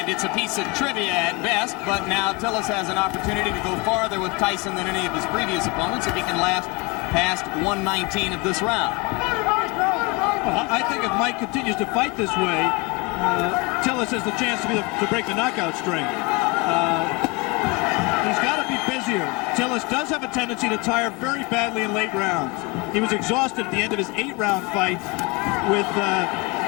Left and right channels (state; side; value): quieter; right; 27.1 dB